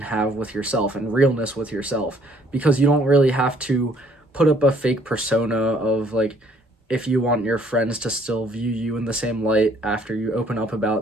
have with yourself and realness with yourself, because you don't really have to put up a fake persona of like, if you want your friends to still view you in the same light after you open up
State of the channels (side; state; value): both; normal; correlation 0.63